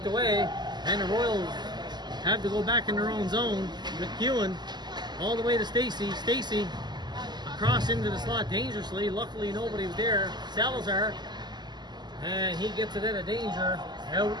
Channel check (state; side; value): late; left; 0.21 ms